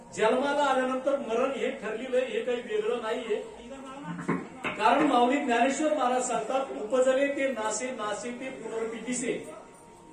जन्माला आल्यानंतर मरण हे ठरलेलं आहे, हे काही वेगळं नाहीये. कारण माऊली ज्ञानेश्वर महाराज सांगतात, उपजले ते नासे, नासे ते पुनर्पितीसे,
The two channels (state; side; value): identical; both; correlation 1.00